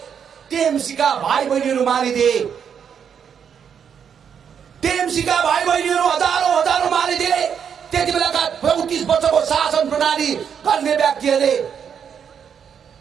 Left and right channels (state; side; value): quieter; left; 7.6 dB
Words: टीएमसी का भाइ बहिनीहरू मारिदिए। टीएमसी का भाइ बहिनीहरू हजारौं मारिदिए। त्यति बेलाका 34 वर्षको शासन प्रणाली गर्ने व्यक्तिहरूले